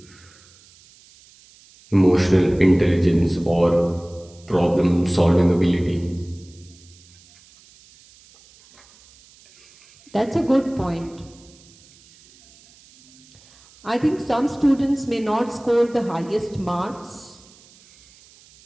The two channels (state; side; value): noise; right; hiss, 27 dB below the sound